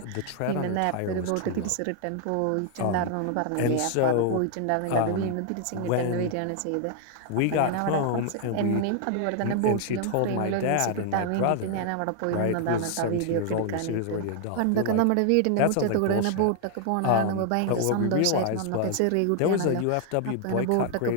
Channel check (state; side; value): different; both; correlation 0.00